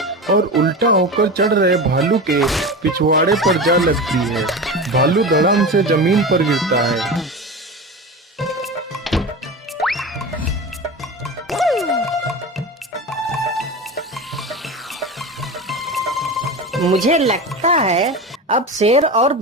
और उल्टा होकर चढ़ रहे भालू के पिछवाड़े पर जा लगती है। भालू धड़ाम से जमीन पर गिरता है। मुझे लगता है अब शेर और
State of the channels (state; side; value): normal; both; correlation 0.27